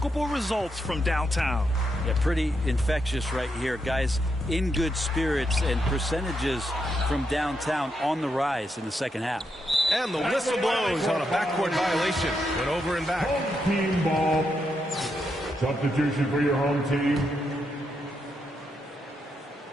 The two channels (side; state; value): both; normal; correlation 0.82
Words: results from downtown. Yeah, pretty infectious right here. Guys in good spirits and percentages from downtown on the rise in the second half. And the whistle blows on a backcourt violation. Went over and back. Home team ball. Substitution for your home team.